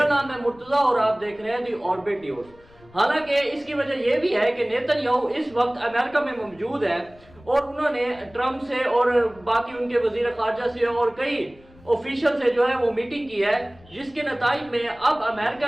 نام ہے مرتضیٰ اور آپ دیکھ رہے ہیں دی آربٹ نیوز۔ حالانکہ اس کی وجہ یہ بھی ہے کہ نیتن یاہو اس وقت امریکہ میں موجود ہے اور انہوں نے ٹرمپ سے اور باقی ان کے وزیر خارجہ سے اور کئی آفیشل سے جو ہے وہ میٹنگ کی ہے، جس کے نتائج میں اب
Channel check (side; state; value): left; noise; rumble, 26 dB below the sound